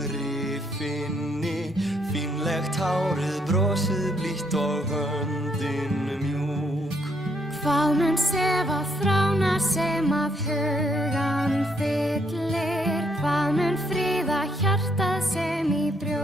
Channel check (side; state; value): both; normal; correlation 0.72